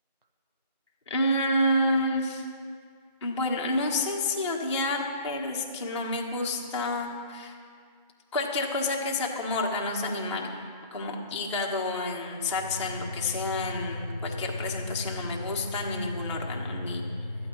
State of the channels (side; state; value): both; inverted; correlation -0.46